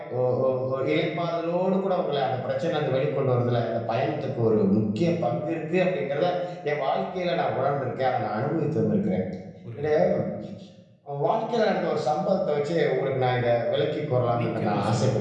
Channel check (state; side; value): identical; both; correlation 1.00